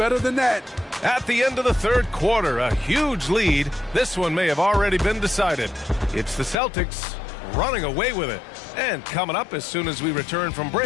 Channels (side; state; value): right; drops out; at 6.6 s